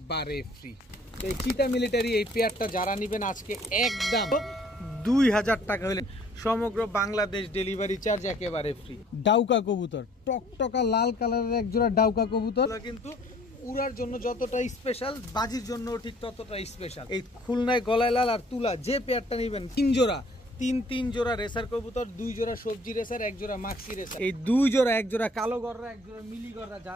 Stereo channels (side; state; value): both; normal; correlation 0.57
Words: ফ্রি। তো এই চিতা মিলিটারি এই পেয়ারটা যারা নেবেন আজকে একদম 2000 টাকা হলে সমগ্র বাংলাদেশ ডেলিভারি চার্জ একেবারে ফ্রি। ডাউকা কবুতর টকটকা লাল কালারের এক জোড়া ডাউকা কবুতর কিন্তু উড়ার জন্য যতটা স্পেশাল বাজির জন্য ঠিক ততটা স্পেশাল। এই খুলনায় গলায় লাল আর তুলা যে পেয়ারটা নেবেন 3 জোড়া তিন জোড়া রেসার কবুতর 2 জোড়া সবজি রেসার 1 জোড়া মাক্সি রেসার এই 2 জোড়া 1 জোড়া কালো গররা 1 জোড়া মিলি গররা